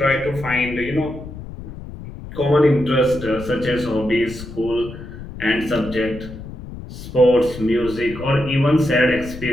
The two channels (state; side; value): noise; left; rumble, 12 dB below the sound